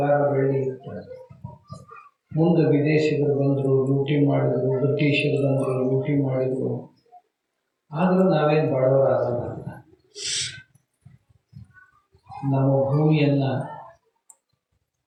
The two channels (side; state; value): both; identical; correlation 1.00